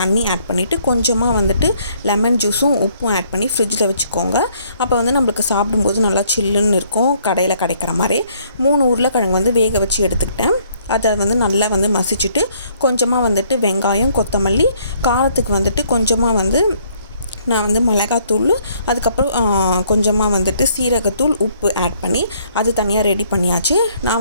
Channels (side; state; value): both; inverted; correlation -0.65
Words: ஆட் பண்ணிவிட்டு கொஞ்சமாக வந்துட்டு லெமன் ஜூஸும் உப்பும் ஆட் பண்ணி ஃப்ரிட்ஜில் வச்சுக்கோங்க. அப்போ நம்மளுக்கு சாப்பிடும்போது நல்லா சில்லுன்னு இருக்கும். கடையில் கிடைக்கிற மாதிரி 3 உருளைக்கிழங்கு வேக வச்சு எடுத்துக்கிட்டேன். அதை நல்லா மசிச்சுட்டு கொஞ்சமாக வந்துட்டு வெங்காயம், கொத்தமல்லி, காரத்துக்கு கொஞ்சமாக நான் மிளகாத்தூள், அதுக்கப்புறம் கொஞ்சமாக வந்துட்டு சீரகத்தூள், உப்பு ஆட் பண்ணி அது தனியாக ரெடி பண்ணியாச்சு.